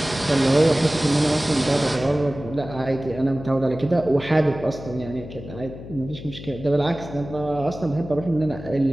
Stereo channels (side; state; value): left; noise; hum, 13 dB below the sound